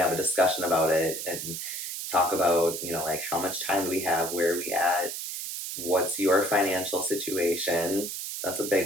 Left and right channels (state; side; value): noise; right; hiss, 6 dB below the sound